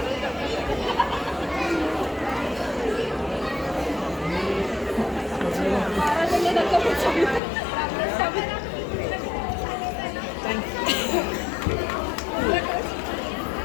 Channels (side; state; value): right; drops out; at 7.4 s